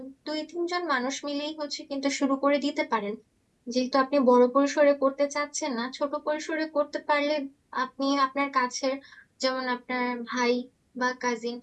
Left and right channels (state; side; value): identical; both; correlation 1.00